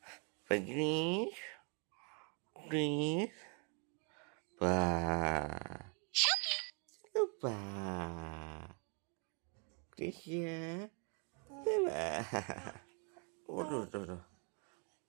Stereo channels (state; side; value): quieter; left; 37.7 dB